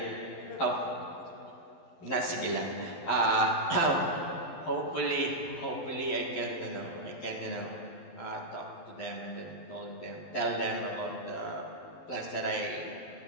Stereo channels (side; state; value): right; late; 12 ms